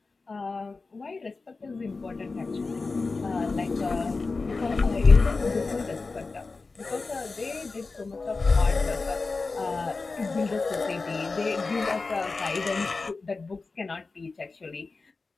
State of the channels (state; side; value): quieter; right; 3.9 dB